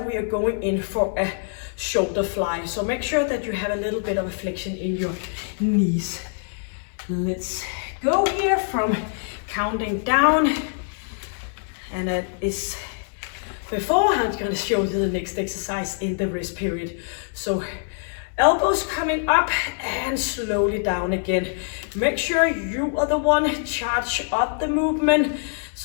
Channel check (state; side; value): silent; right; digital silence